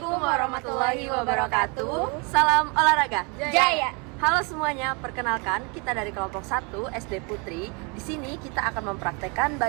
warahmatullahi wabarakatuh. Salam olahraga. Jaya. Halo semuanya, perkenalkan kita dari kelompok 1 SD Putri. Di sini kita akan mempraktekkan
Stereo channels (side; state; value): left; quieter; 32.1 dB